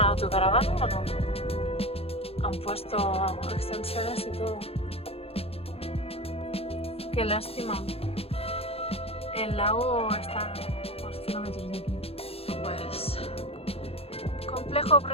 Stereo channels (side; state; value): right; late; 0.28 ms